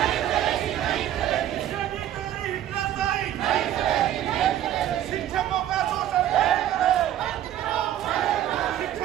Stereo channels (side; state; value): left; quieter; 11.8 dB